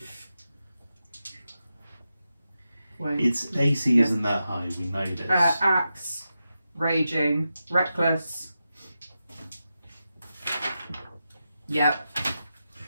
Wait. Its AC Yes. isn't that high, we know this. Axe, raging, reckless. Yep.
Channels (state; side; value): inverted; both; correlation -0.90